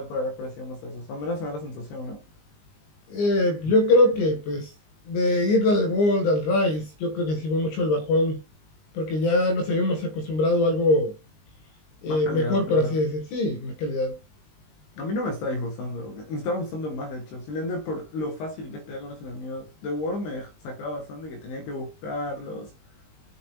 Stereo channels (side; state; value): right; late; 19 ms